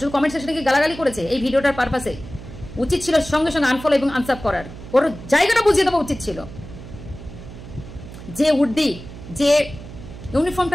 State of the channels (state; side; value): noise; right; hum, 14 dB below the sound